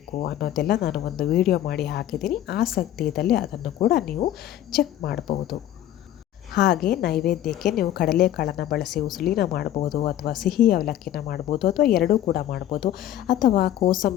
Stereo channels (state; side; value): quieter; right; 12.3 dB